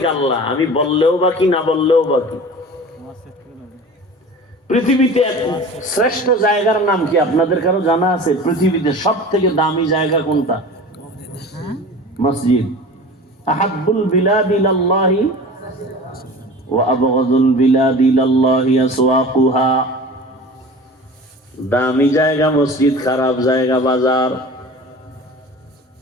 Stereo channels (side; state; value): both; normal; correlation 0.38